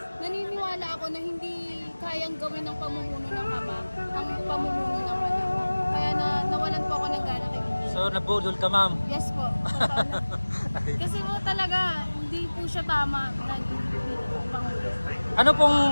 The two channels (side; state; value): both; inverted; correlation -1.00